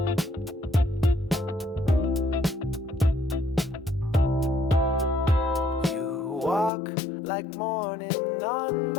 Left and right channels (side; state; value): right; drops out; at 6.7 s